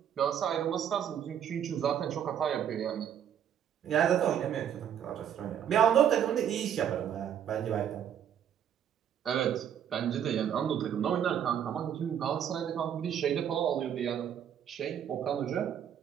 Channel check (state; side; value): quieter; left; 9.3 dB